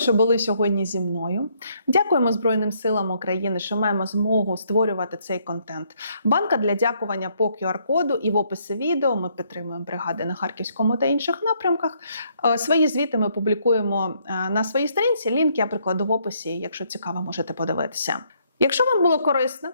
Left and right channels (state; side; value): inverted; both; correlation -0.70